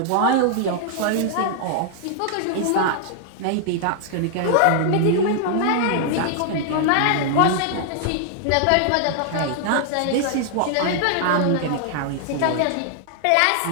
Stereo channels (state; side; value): different; both; correlation 0.00